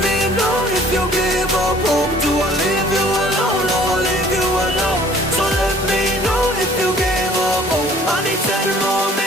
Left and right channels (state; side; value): normal; both; correlation 0.54